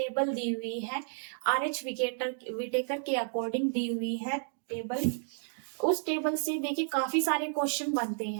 दी हुई है, आर एच विटेकर के अकॉर्डिंग दी हुई है टेबल। उस टेबल से देखिए काफी सारे क्वेश्चन बनते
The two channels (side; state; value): left; silent; digital silence